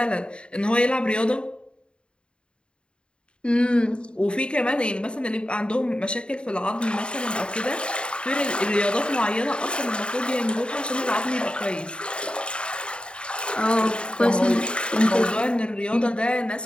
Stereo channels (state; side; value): late; right; 0.053 ms